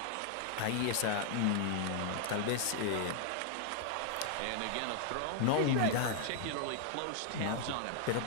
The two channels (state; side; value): different; both; correlation 0.00